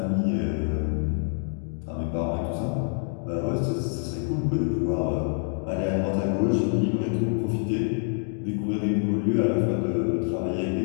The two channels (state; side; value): silent; right; 61 dB below the other